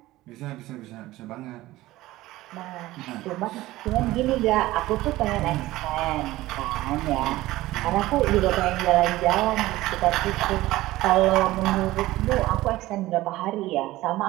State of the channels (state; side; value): quieter; left; 17.2 dB